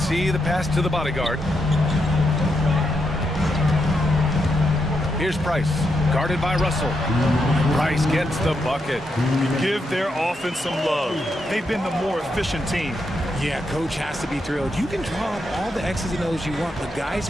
the pass to the bodyguard. Here's Price, guarded by Russell. Price gets the bucket. Give their offense some love. They've been the more efficient team. Yeah, coach has to be thrilled. You can draw up all the X's and O's you want, but guys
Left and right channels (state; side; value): normal; both; correlation 0.82